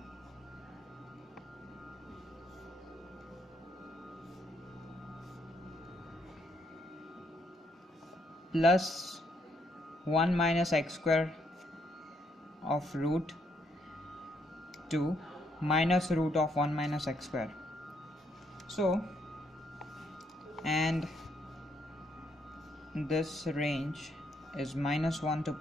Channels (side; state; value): both; normal; correlation 0.73